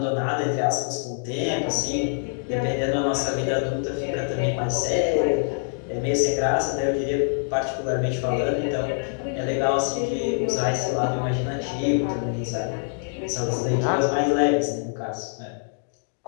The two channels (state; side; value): silent; right; digital silence